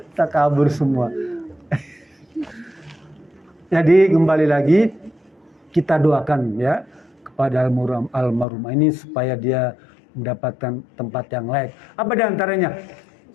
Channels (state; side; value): drops out; right; at 8.5 s